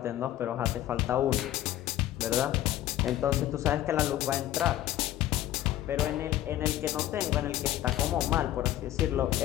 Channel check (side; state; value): right; quieter; 13.4 dB